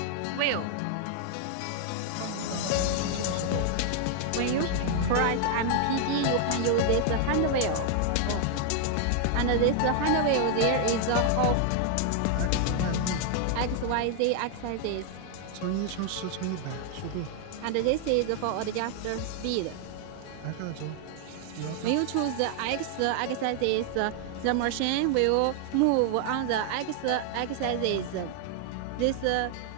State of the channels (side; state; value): both; different; correlation 0.00